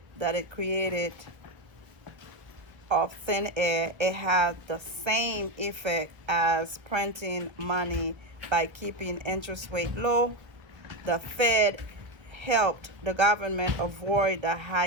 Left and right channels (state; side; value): late; left; 1.3 ms